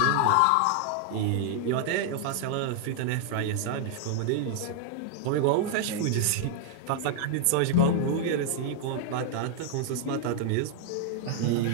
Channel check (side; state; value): both; different; correlation 0.00